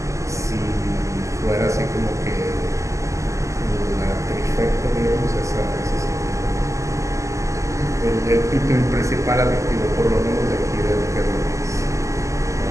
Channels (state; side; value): late; left; 0.15 ms